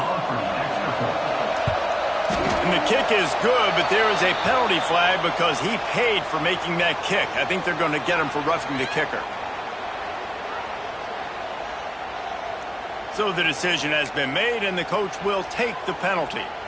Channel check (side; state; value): both; identical; correlation 1.00